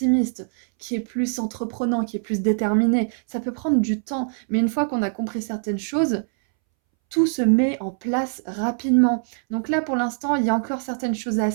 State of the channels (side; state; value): left; silent; 63 dB below the other